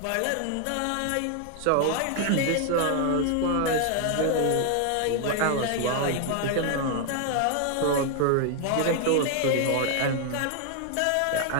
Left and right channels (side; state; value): both; different; correlation 0.00